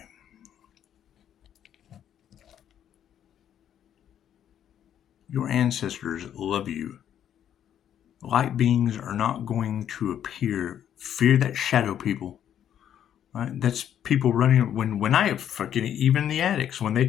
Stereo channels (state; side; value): quieter; right; 10.0 dB